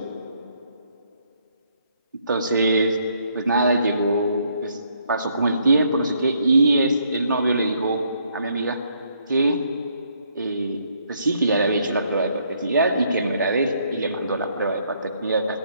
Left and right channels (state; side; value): inverted; both; correlation -0.70